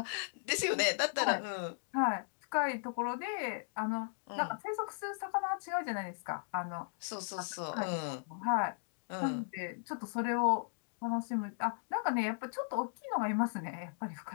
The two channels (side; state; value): right; silent; digital silence